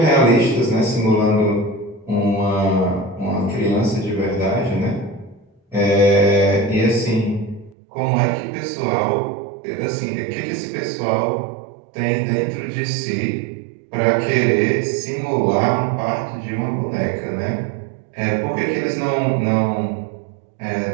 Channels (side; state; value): left; drops out; at 7.8 s